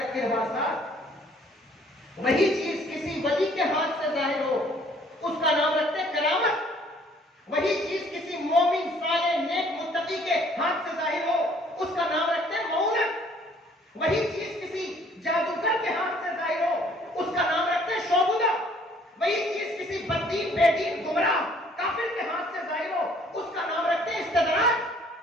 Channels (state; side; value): normal; both; correlation 0.59